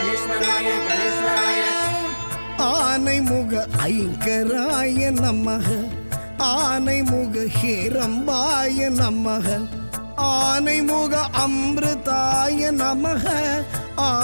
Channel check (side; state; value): both; inverted; correlation -1.00